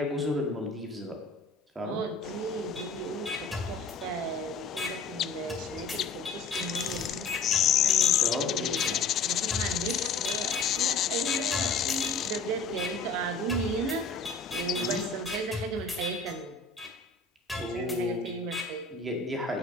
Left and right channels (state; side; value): quieter; right; 4.0 dB